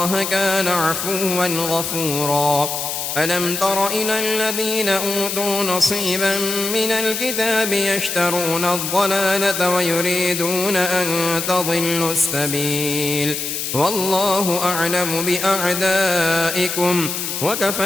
كان عفوا غفورا ألم تر إلى الذين أوتوا نصيبا من الكتاب يشترون الضلالة ويريدون أن تضلوا السبيل والله أعلم بأعدائكم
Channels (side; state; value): left; noise; hiss, 4 dB below the sound